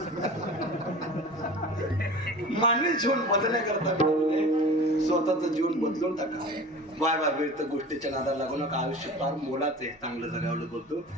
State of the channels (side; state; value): both; normal; correlation 0.37